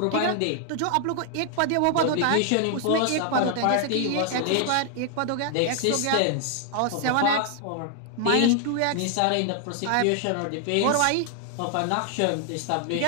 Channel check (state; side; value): different; both; correlation 0.00